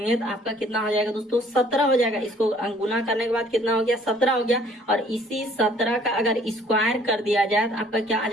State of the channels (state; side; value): normal; both; correlation 0.58